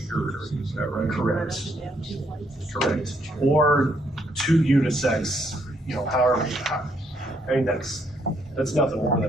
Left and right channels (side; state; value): both; normal; correlation 0.72